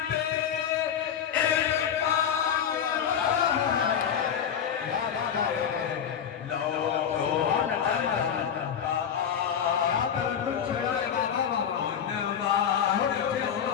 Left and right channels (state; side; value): quieter; right; 8.3 dB